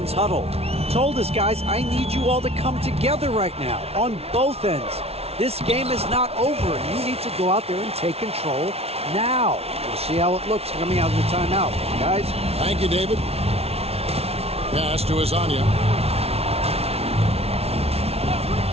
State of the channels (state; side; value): late; left; 0.30 ms